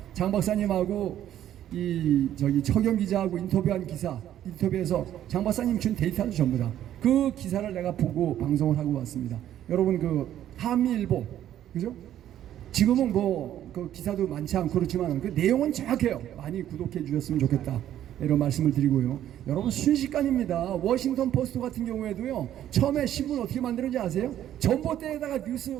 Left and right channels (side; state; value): left; quieter; 11.5 dB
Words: 장 박사님하고 저기 허겸 기자하고 인터뷰한 기사 인터뷰에서 장 박사님 준 데이터를 전부 다 그 기사를 내가 보고 방송을 하고 왔습니다. 여러분 그 한미일보 그죠? 지금은 뭐 그 기사도 많지 않고 그렇지만 그 내용은 정확해요. 많이 구독해 주셨으면 좋겠다. 이런 말씀을 드리고요. 여러분 순식간입니다. 워싱턴 포스트 같은 경우에도요. 처음에 신문 어떻게 만들었는지 아세요? 전봇대에다가 뉴스